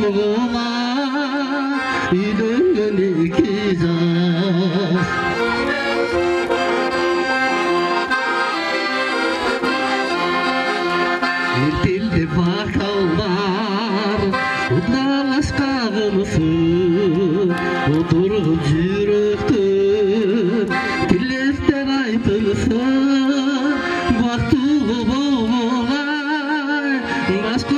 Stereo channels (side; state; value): both; identical; correlation 1.00